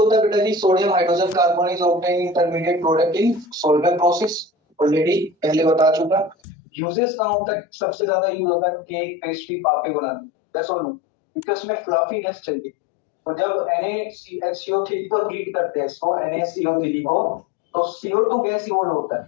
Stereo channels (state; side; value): drops out; right; at 6.4 s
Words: है बेटा जी, sodium hydrogen carbonate obtain intermediate product in Solvay process, already पहले बता चुका। यूजेस कहाँ होता है, सबसे ज्यादा यूज होता है केक, पेस्ट्री, पापे बनाने। यस और नो, क्योंकि उसमें फ्लफीनेस चाहिए। तो जब NaCO3 को हीट करते हैं, इसको NaCO3 को, तो CO2 गैस इवॉल्व होता